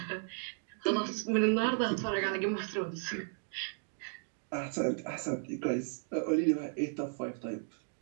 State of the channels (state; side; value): silent; left; digital silence